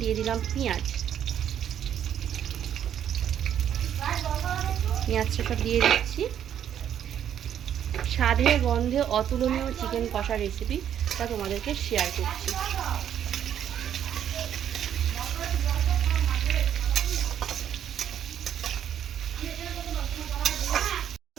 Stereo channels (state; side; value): quieter; left; 9.7 dB